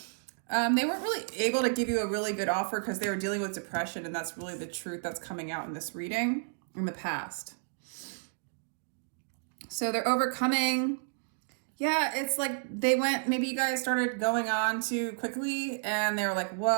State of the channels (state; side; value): silent; left; digital silence